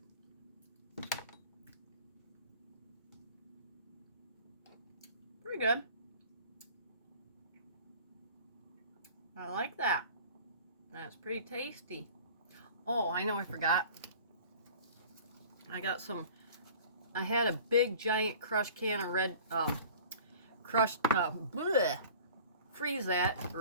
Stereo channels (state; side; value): inverted; both; correlation -0.44